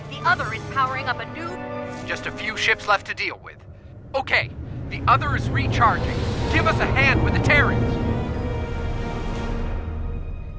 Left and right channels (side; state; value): both; identical; correlation 1.00